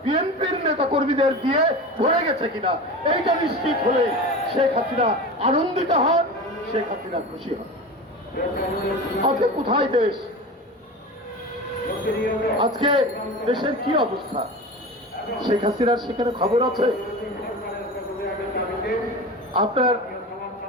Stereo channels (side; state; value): both; normal; correlation 0.30